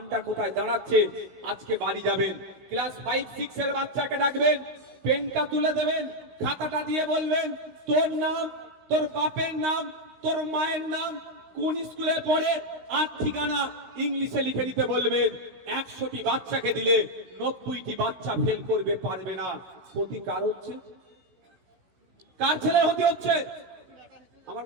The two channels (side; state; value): left; late; 16 ms